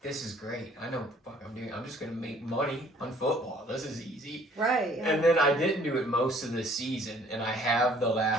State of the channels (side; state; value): both; normal; correlation 0.58